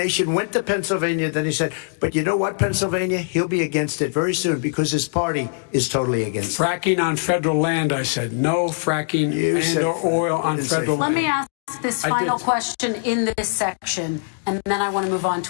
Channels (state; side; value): silent; right; digital silence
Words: went to Pennsylvania, then he said, but you know what, Pennsylvania? He'll be against it very soon because his party is totally against it. Fracking on federal land, I said. No fracking and or oil on federal land. Let me ask this final question in this section, and then I want to move on